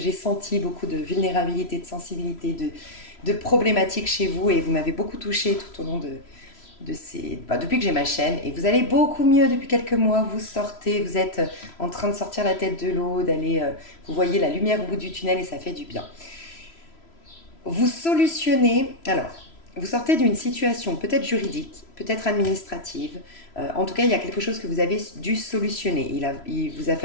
senti beaucoup de vulnérabilité, de sensibilité, de problématiques chez vous et vous m'avez beaucoup touché tout au long depuis que j'ai ma chaîne. Et vous allez beaucoup mieux depuis quelques mois. Vous sortez, vous êtes en train de sortir la tête de l'eau, vous voyez la lumière au bout du tunnel et ça fait du bien. Vous solutionnez, alors, vous sortez d'une situation peut-être juridique, peut-être administrative. En tout cas, il y a quelque chose que vous avez dû solutionner. Il vous a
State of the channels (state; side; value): late; right; 3.0 ms